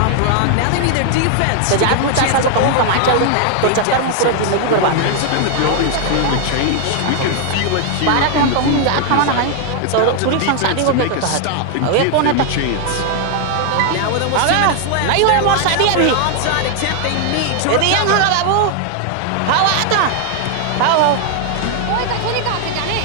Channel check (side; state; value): both; different; correlation 0.00